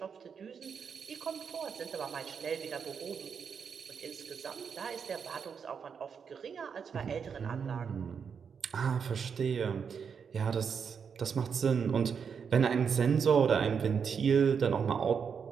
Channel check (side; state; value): left; quieter; 6.6 dB